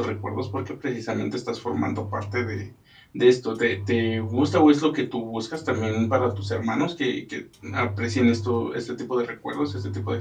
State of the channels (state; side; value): identical; both; correlation 1.00